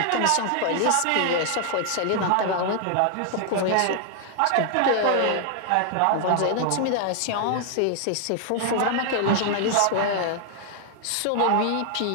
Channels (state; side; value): different; both; correlation 0.00